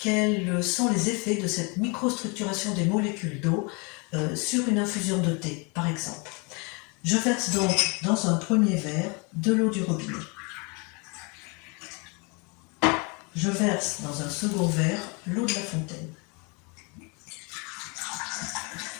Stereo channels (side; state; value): right; quieter; 31.2 dB